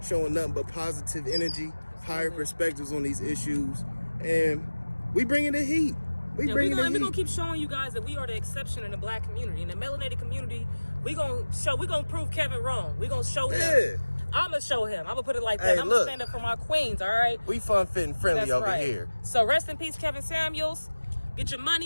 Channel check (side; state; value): both; inverted; correlation -1.00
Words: showing nothing but positive energy, higher perspectives on these issues. And we bringing the heat. We're going to keep showing you guys that we are the exception in the black community. In the melanated community, we're going to prove Kevin wrong. We're going to show him. I'm going to show him. I'm going to put it like that. Hey, I'm going to stand up for my queens, all right? We fun, fit, and friendly over here. So rest in peace, Kevin Samuels. Get your